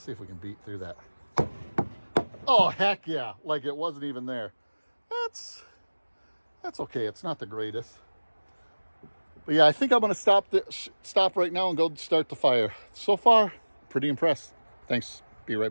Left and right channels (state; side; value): inverted; both; correlation -1.00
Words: if we can beat through that. Oh, heck yeah. Like it wasn't even there. That's okay. It's not the greatest. But yeah, I think I'm going to stop right now and go start the fire. So far, pretty impressed. Thanks. Be right